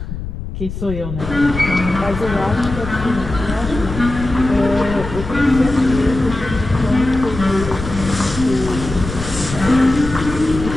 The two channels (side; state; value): left; noise; rumble, 8 dB below the sound